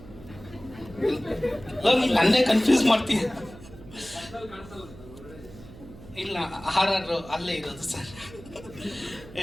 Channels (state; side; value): noise; right; hum, 18 dB below the sound